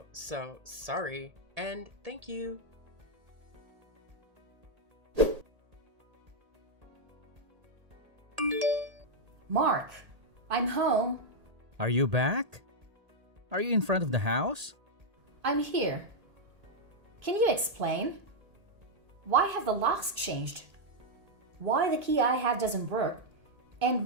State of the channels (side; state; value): left; late; 1.8 ms